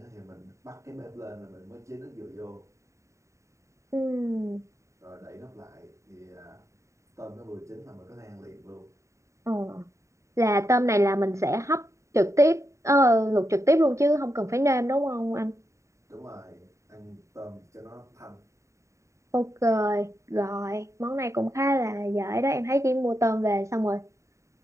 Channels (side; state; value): left; late; 0.14 ms